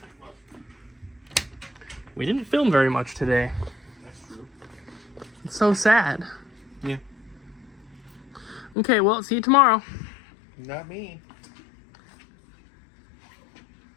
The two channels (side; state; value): right; drops out; at 8.8 s